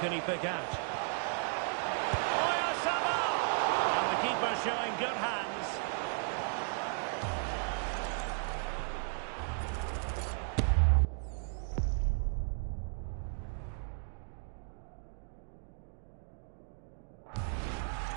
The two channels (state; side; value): silent; left; 54 dB below the other